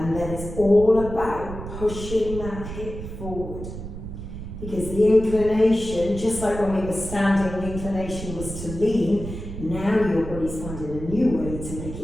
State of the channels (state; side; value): noise; right; rumble, 9 dB below the sound